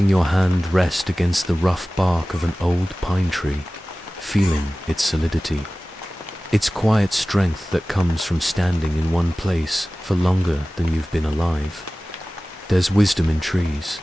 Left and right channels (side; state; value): both; normal; correlation 0.97